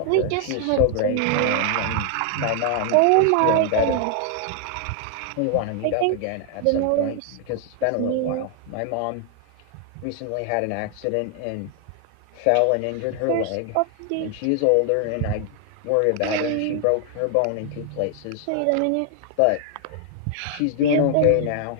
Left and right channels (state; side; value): different; both; correlation 0.00